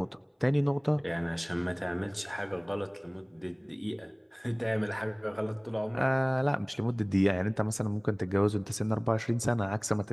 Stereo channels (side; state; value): both; identical; correlation 1.00